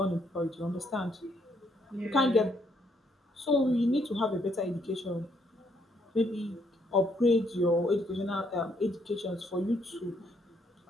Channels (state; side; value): normal; both; correlation 0.72